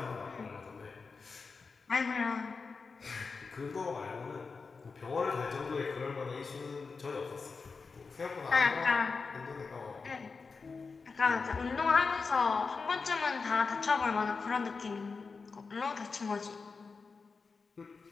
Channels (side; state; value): right; quieter; 4.7 dB